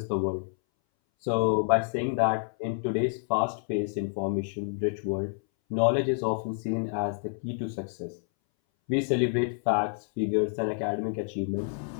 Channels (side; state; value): right; silent; 59 dB below the other